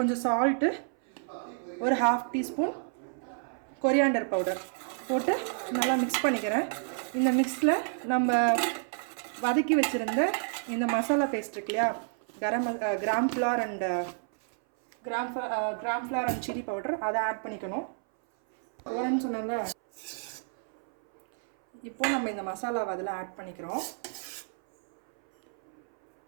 சால்ட்டு, ஒரு 1/2 டீஸ்பூன் கொரியாண்டர் பவுடர் போட்டு நல்லா மிக்ஸ் பண்ணிக்கிறேன். இந்த மிக்ஸில் நம்ம வதக்கி வச்சுருந்த இந்த மசாலா பேஸ்ட் இருக்கு இல்லையா, gram flour and chilli powder, அதை ஆட் பண்ணிக்கணும். போகிறேன்னு சொன்னாங்க. இப்போ நம்ம இந்த மசாலாவை அதில் ஆட் பண்ணிக்கிறோம்.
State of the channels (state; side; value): silent; left; 58 dB below the other